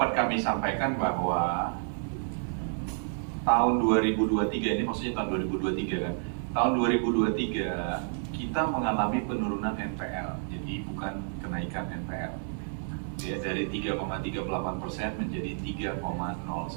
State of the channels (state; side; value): silent; left; digital silence